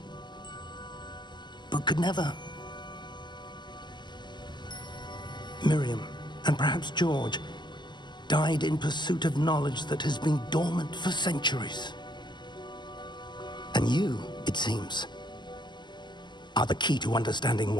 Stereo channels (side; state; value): right; late; 0.21 ms